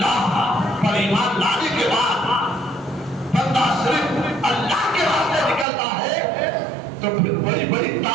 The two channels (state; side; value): drops out; left; at 5.7 s